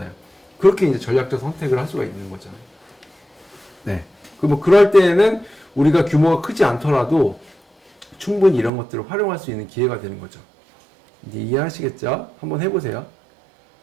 그렇게 이제 전략적 선택을 할 수가 있는 거죠. 네. 뭐 그럴 때에는 우리가 규모가 크지 않더라도 충분히 이런 것들을 활용할 수 있는 기회가 되는 거죠. 이제 이해하시겠죠? 한번 해보세요.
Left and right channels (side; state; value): left; drops out; at 8.7 s